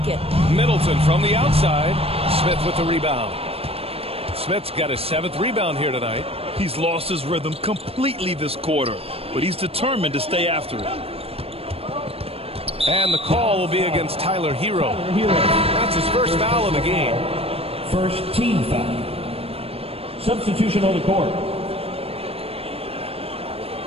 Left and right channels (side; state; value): left; late; 0.28 ms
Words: it. Middleton from the outside. Smith with the rebound. Smith's got his 7th rebound here tonight. He's lost his rhythm completely this quarter, but he's determined to stay after it. And the call will be against Tyler Hero. That's his first foul of the game. First team foul. Substitution on the court.